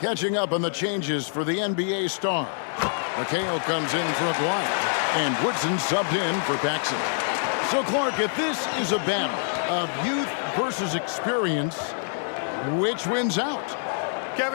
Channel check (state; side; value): silent; right; digital silence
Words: up on the changes for the NBA Stars. McHale comes in for Aguirre, and Woodson subbed in for Paxson. So, Clark, if this is a battle of youth versus experience, which wins out?